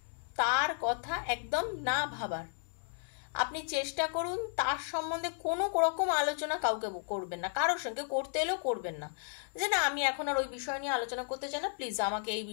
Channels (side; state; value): right; silent; 55 dB below the other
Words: তার কথা একদম না ভাবার। আপনি চেষ্টা করুন তার সম্বন্ধে কোনো রকম আলোচনা কাউকে করবেন না, কারোর সঙ্গে করতে এলেও করবেন না। যে না, আমি এখন আর ওই বিষয় নিয়ে আলোচনা করতে চাই না, প্লিজ আমাকে এই